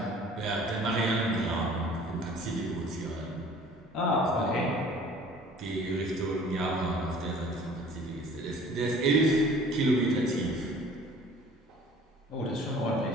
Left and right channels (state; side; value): normal; both; correlation 0.50